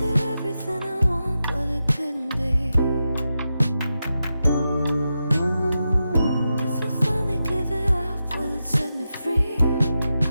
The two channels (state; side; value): inverted; both; correlation -0.89